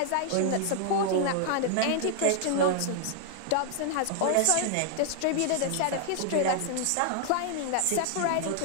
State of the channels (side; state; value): both; different; correlation -0.01